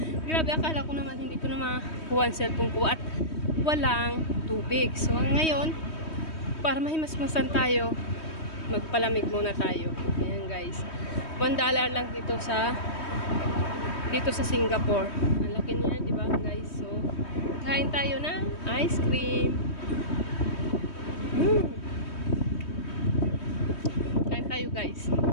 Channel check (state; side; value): late; right; 3.2 ms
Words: Grabe, akala ko naman hindi ko na makuha ang cellphone ko at walang tubig. So, ngayon, para mahimasmasan tayo, magpalamig muna tayo. Ayan guys. $1 lang dito sa Singapore. Ang laki niya, di ba guys? So, kain tayo ng ice cream. Kain tayo guys.